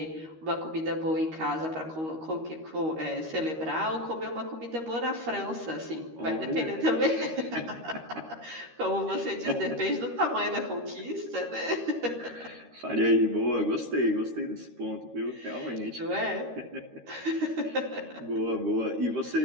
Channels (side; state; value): left; late; 13 ms